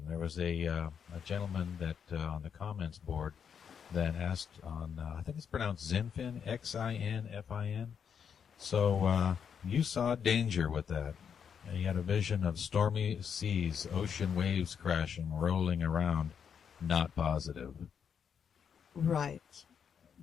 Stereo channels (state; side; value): quieter; right; 7.4 dB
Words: There was a gentleman that on the comments board that asked on, I think it's pronounced Zinfin, Xinfin. So you saw danger with that. And you had a vision of stormy seas, ocean waves crashing, rolling around. Not positive. Right.